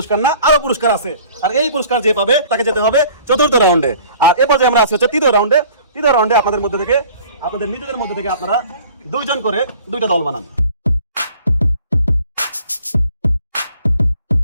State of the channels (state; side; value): inverted; both; correlation -0.51